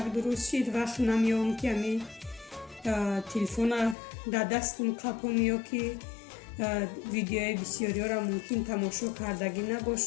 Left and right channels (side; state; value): right; drops out; at 4.0 s